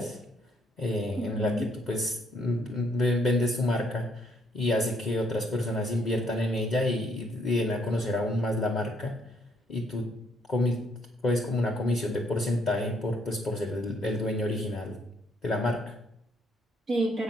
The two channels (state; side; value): normal; both; correlation 0.69